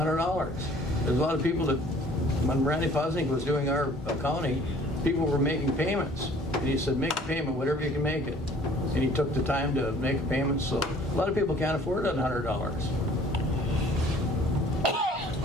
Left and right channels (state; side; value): normal; both; correlation 0.54